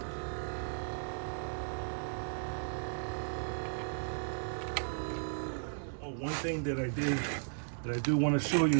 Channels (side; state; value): left; silent; digital silence